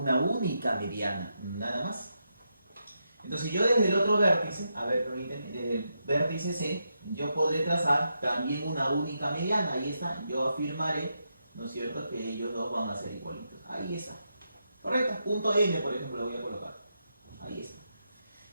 única mediana, nada más. Entonces yo desde el otro vértice, a ver, desde el vértice C, yo podré trazar también una única mediana. Ahí está, yo afirmaré, ¿no es cierto?, que ellos dos van a ser igualitos. Ahí está. Correcto, punto N, por ejemplo, lo voy a colocar. Ahí está.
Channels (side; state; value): both; inverted; correlation -0.84